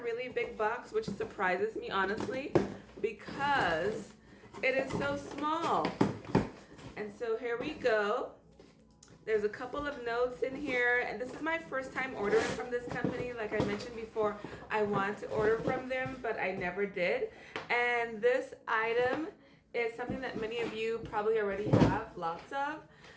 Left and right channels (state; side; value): identical; both; correlation 1.00